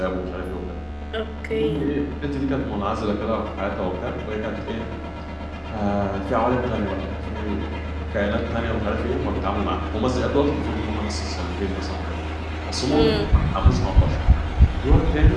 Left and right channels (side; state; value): both; identical; correlation 1.00